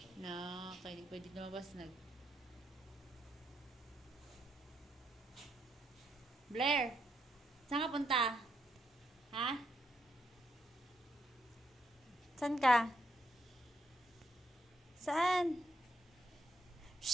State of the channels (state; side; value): normal; both; correlation 0.78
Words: Na, kaya di pwede lumabas. Blair, saan ka punta? Ha? Saan ka? Saan?